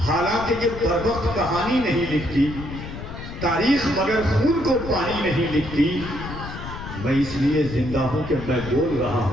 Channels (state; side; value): noise; left; rumble, 10 dB below the sound